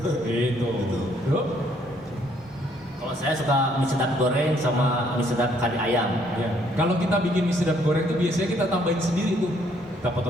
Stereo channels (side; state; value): both; normal; correlation 0.66